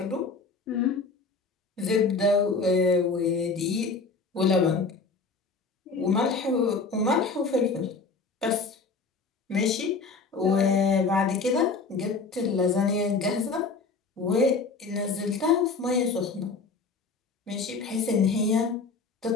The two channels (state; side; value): quieter; right; 4.3 dB